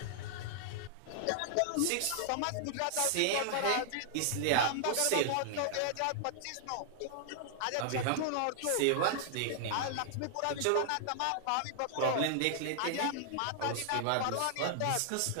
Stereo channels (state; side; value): different; both; correlation 0.00